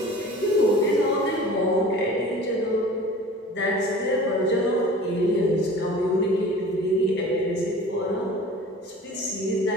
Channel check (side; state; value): both; normal; correlation 0.42